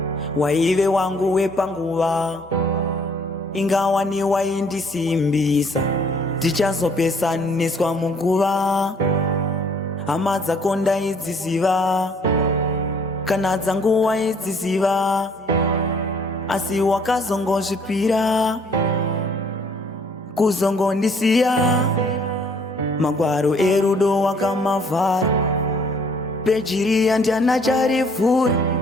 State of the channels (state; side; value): normal; both; correlation 0.60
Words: waive wangu wepanguva, ingawa ni waindisimbisa, tichazopesaniswa muguva. Hama dzako ndaidziziva, kana dzangu waidziziva, asi wakazongozvipira kuzongondisiya. Magwaro erudo wakamavhara, peji riya ndiana charivhura.